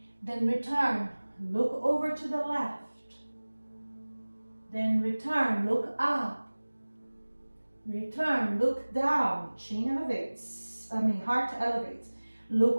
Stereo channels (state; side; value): inverted; both; correlation -1.00